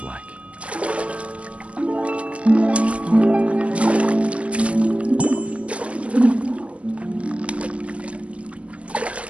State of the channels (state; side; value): late; left; 0.062 ms